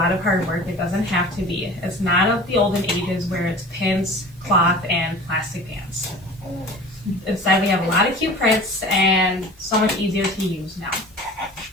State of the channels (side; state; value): both; normal; correlation 0.40